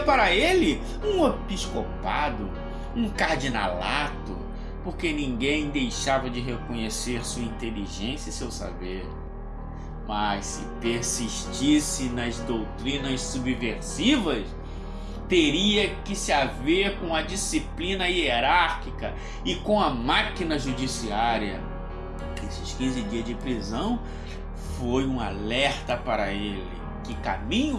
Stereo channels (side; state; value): both; identical; correlation 1.00